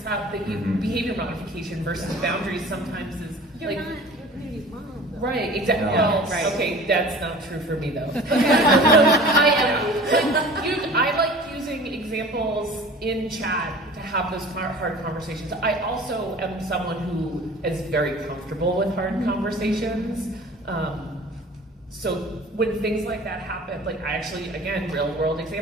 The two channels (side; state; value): both; normal; correlation 0.43